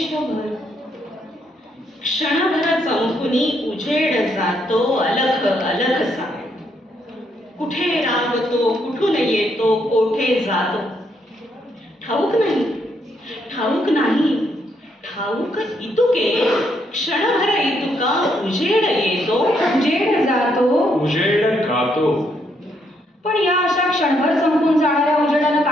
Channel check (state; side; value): normal; both; correlation 0.75